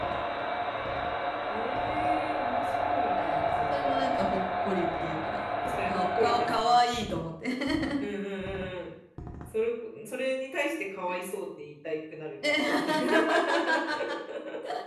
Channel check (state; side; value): identical; both; correlation 1.00